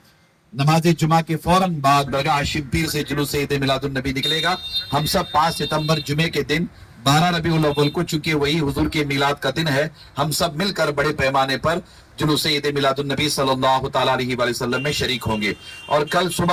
नमाज जुमा के फौरन बाद दरगाह शिबपीर से जुलूस ईद मिलादुन नबी निकलेगा। हम सब 5 सितंबर जुमे के दिन 12 रबीउल अव्वल को, चूंकि वही हुजूर के मिलाद का दिन है, हम सब मिलकर बड़े पैमाने पर जुलूस ईद मिलादुन नबी सल्लल्लाहु तआला अलैहि वसल्लम में शरीक होंगे। और कल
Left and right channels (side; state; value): both; identical; correlation 1.00